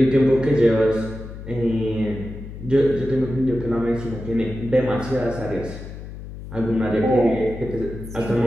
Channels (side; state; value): left; noise; hum, 12 dB below the sound